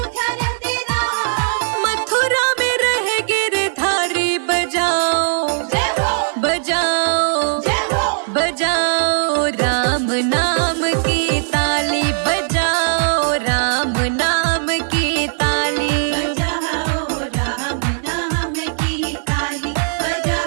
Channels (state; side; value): silent; left; digital silence